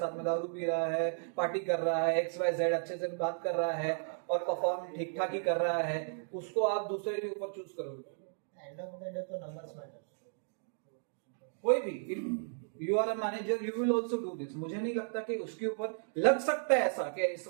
में दारू पी रहा है, पार्टी कर रहा है, XYZ अच्छे से बात कर रहा है और परफॉर्म ठीक ठाक ही कर रहा है, उसको आप दूसरे के ऊपर चूज करोगे? एंड ऑफ द डे तो नंबर्स मैटर। कोई भी, if you are a manager you will also do this. मुझे नहीं लगता कि उसके ऊपर लग सकता है ऐसा कि इस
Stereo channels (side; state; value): left; silent; digital silence